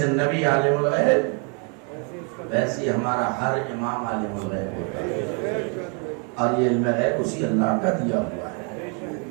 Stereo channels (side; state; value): left; quieter; 36.6 dB